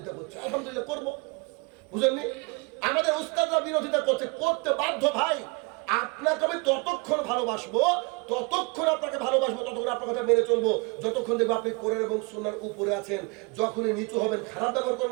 করছে, আলহামদুলিল্লাহ করব, বুঝেননি? আমাদের উস্তাদরা বিরোধিতা করছে, করতে বাধ্য ভাই। আপনাকে আমি ততক্ষণ ভালোবাসবো, ততক্ষণ আপনাকে ভালোবাসবো, ততক্ষণ আপনার কথা মেনে চলবো যতক্ষণ দেখবো আপনি কোরআন এবং সুন্নাহর উপরে আছেন। যখনই নিচু হবেন খারাপ ব্যবহার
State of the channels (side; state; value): left; quieter; 28.8 dB